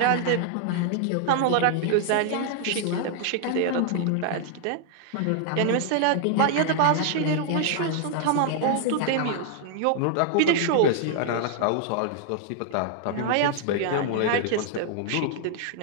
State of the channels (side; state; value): both; different; correlation -0.01